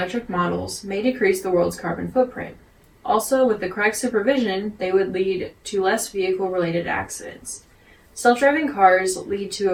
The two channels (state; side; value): identical; both; correlation 1.00